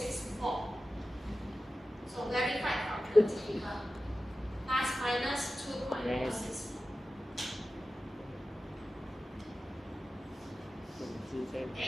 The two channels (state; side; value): normal; both; correlation 0.94